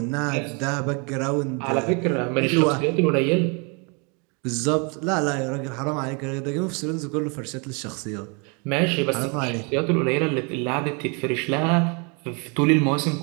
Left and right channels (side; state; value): left; quieter; 33.4 dB